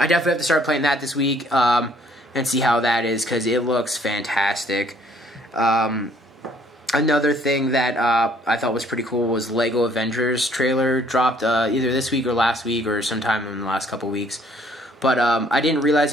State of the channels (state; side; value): normal; both; correlation 0.62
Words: definitely have to start playing that this week and see how that is, because it looks fantastic. Another thing that I thought was pretty cool was Lego Avengers trailer dropped either this week or last week or sometime in the last couple weeks. But I didn't realize